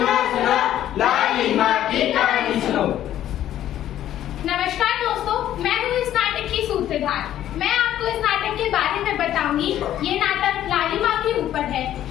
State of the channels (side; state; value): right; quieter; 12.0 dB